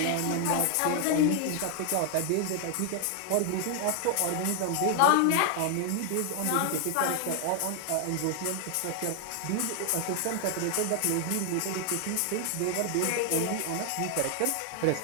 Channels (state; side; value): different; both; correlation 0.00